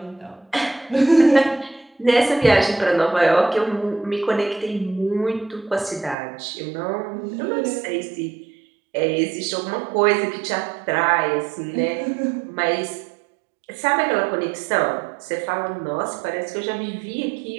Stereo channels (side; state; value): left; drops out; at 6.2 s